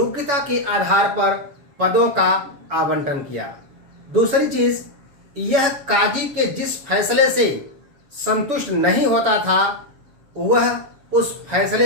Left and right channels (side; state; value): left; late; 7.0 ms